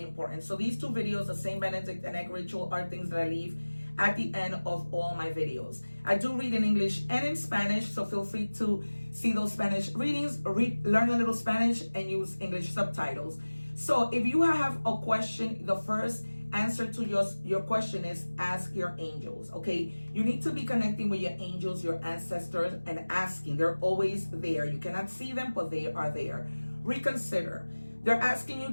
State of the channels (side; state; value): both; inverted; correlation -1.00